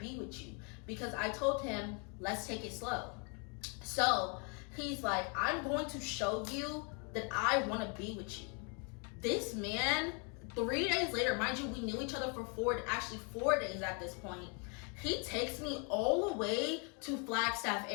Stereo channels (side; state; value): right; quieter; 36.3 dB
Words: with you. Because I told him, let's take it slow. So he's like, I'm going to show you that I want to be with you. This man, 3 days later, mind you, we knew each other for 4 days at this point. He takes me all the way to Flagstaff,